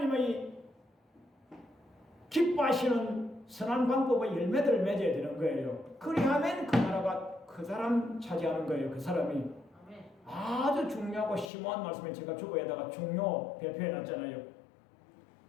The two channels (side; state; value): right; drops out; at 11.5 s